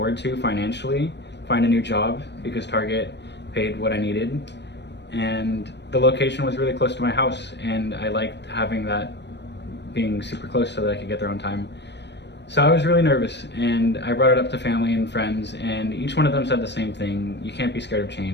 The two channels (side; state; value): right; late; 0.50 ms